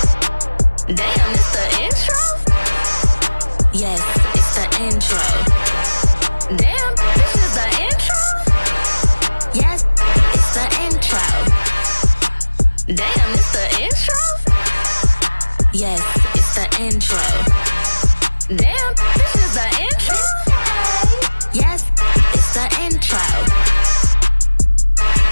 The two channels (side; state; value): both; inverted; correlation -1.00